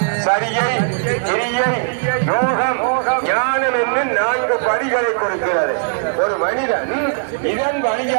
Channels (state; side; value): silent; left; digital silence